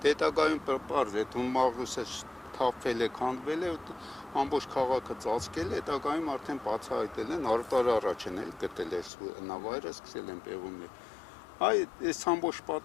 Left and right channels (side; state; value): right; drops out; at 9.1 s